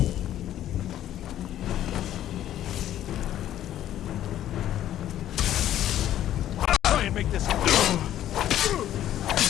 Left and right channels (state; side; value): quieter; right; 12.1 dB